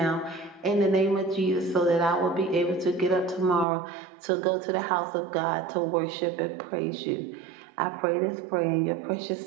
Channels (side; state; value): left; drops out; at 3.7 s